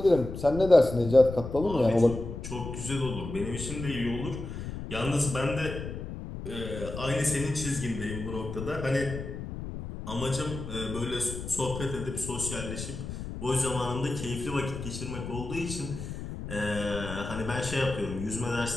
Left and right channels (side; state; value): left; noise; rumble, 8 dB below the sound